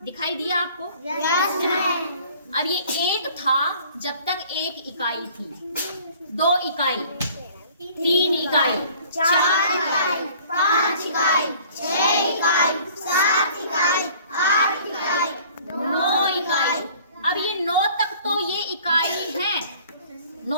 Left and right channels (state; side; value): inverted; both; correlation -0.52